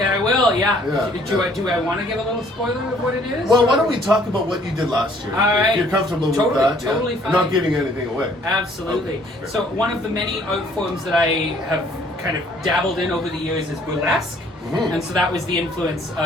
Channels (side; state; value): both; normal; correlation 0.60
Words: I will. Yeah. Do I want to give a little spoiler of what it is? Well, why don't we talk about what you did last year? All right. If you're comfortable with that. Totally fine. I'm not giving anything away. Absolutely. Okay. So one of the many art forms that I have kind of dabbled in over the years is burlesque. Mm-hmm. And so that was the influence